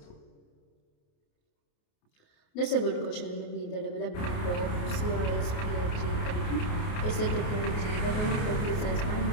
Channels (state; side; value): late; right; 28 ms